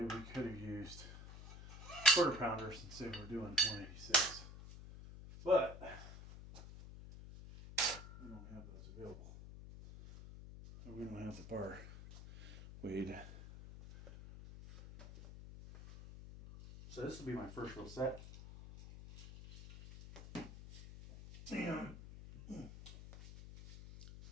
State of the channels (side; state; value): left; noise; hum, 13 dB below the sound